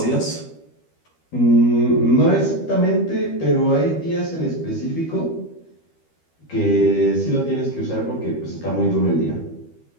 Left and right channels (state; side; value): late; right; 12 ms